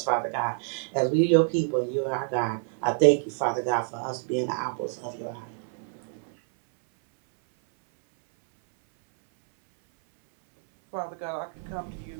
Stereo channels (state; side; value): silent; left; 60 dB below the other